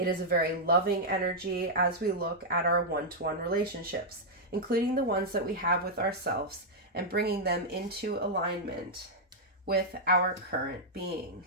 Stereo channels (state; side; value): normal; both; correlation -0.05